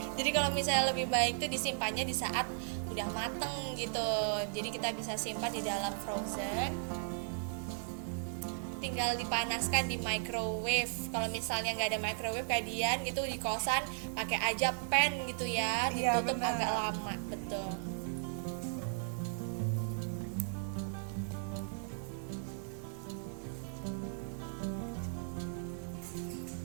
Jadi kalau misalnya lebih baik tuh disimpannya di saat udah mateng gitu. Jadi kita bisa simpan di dalam frozen. Tinggal dipanaskan di microwave. Kalau misalnya nggak ada microwave kayak Dian gitu di kosan, pakai aja pan gitu ya, Iya, ditutup benar. agak lama, betul.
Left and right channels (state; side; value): silent; left; 54 dB below the other